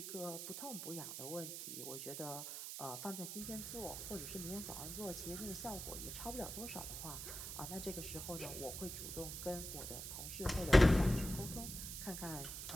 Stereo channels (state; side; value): noise; right; hiss, 6 dB below the sound